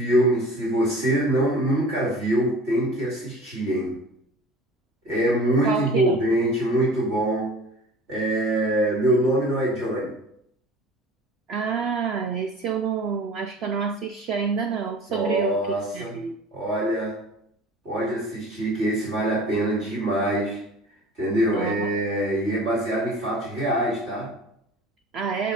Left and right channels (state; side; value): normal; both; correlation 0.42